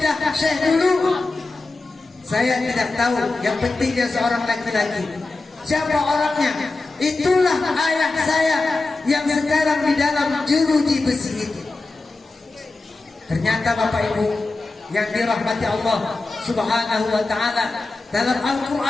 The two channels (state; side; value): quieter; right; 3.4 dB